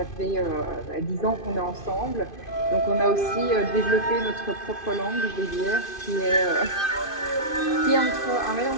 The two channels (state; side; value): late; right; 2.5 ms